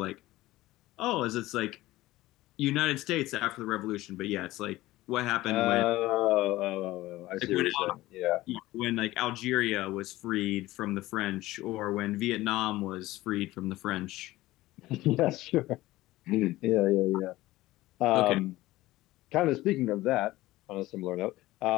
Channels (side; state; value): right; quieter; 17.5 dB